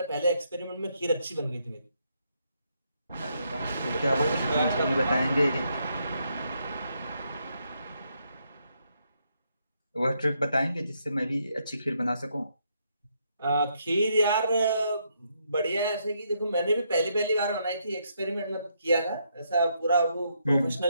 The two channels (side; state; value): both; inverted; correlation -0.76